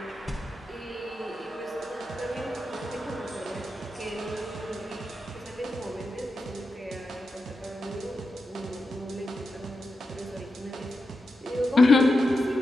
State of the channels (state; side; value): normal; both; correlation 0.89